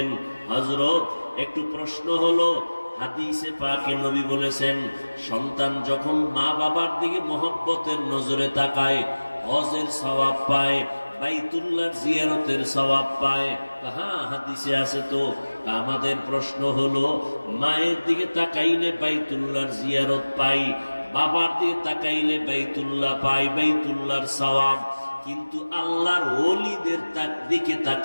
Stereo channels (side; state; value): both; inverted; correlation -1.00